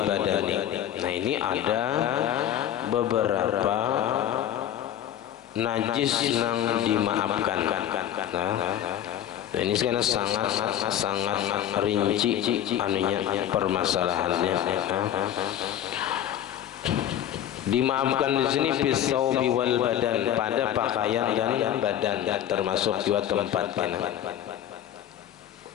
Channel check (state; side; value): quieter; right; 11.0 dB